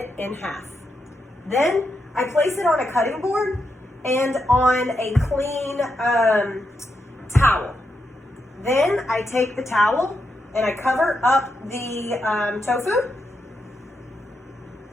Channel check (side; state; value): both; normal; correlation 0.84